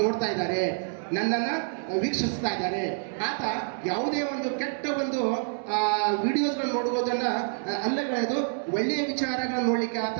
ನೋಡ್ತಾ ಇದ್ದಾರೆ, ನನ್ನನ್ನ ವೀಕ್ಷಿಸ್ತಾ ಇದ್ದಾರೆ. ಆತ ಯಾವುದೇ ಒಂದು ಕೆಟ್ಟ ಒಂದು ವಿಡಿಯೋಸ್ಗಳನ್ನ ನೋಡುವುದನ್ನ ಅಲ್ಲಗಳೆದು ಒಳ್ಳೆಯ ವಿಚಾರಗಳನ್ನ ನೋಡ್ಲಿಕ್ಕೆ ಆತ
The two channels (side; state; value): left; silent; digital silence